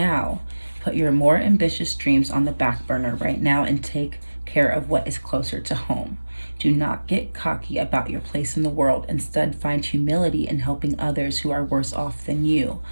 Put your more ambitious dreams on the back burner right now and take care of what is closer to home. Do not get cocky about your place in the world. Instead, find humility in helping others who are worse off than you.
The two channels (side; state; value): both; inverted; correlation -1.00